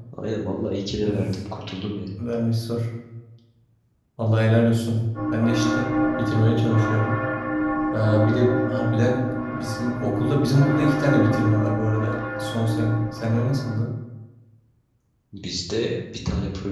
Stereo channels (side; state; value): both; identical; correlation 1.00